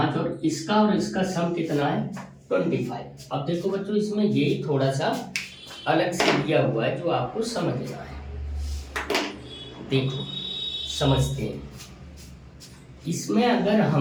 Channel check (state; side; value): identical; both; correlation 1.00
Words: और इसका सम कितना है 25। अब देखो बच्चों, इसमें यही थोड़ा सा अलग से दिया हुआ है जो आपको समझना है। देखो समझते हैं, इसमें